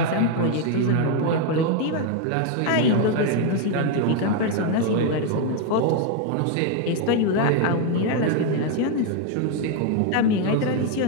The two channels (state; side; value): different; both; correlation 0.01